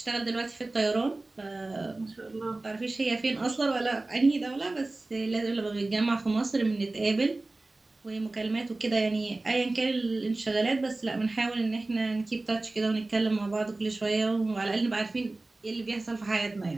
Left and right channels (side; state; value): left; quieter; 3.0 dB